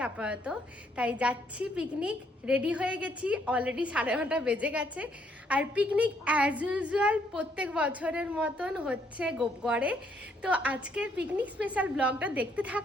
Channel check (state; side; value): normal; both; correlation 0.70